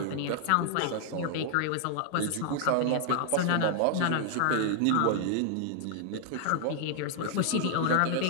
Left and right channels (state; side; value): different; both; correlation 0.00